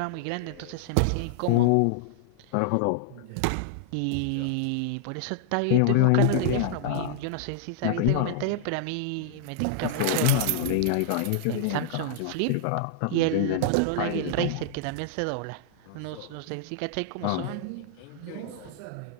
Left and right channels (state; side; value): different; both; correlation -0.01